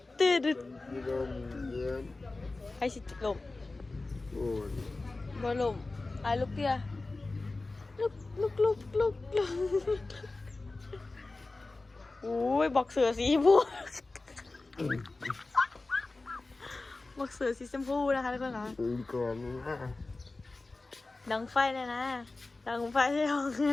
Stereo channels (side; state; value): right; quieter; 3.3 dB